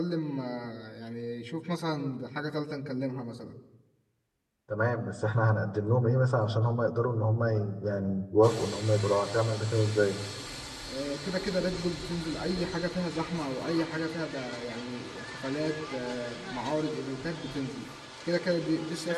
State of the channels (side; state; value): both; identical; correlation 1.00